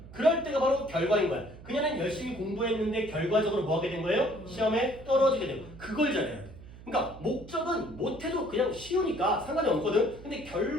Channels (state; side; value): noise; right; hum, 17 dB below the sound